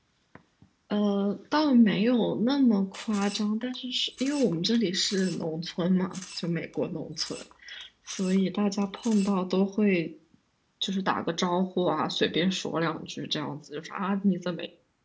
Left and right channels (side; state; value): both; identical; correlation 1.00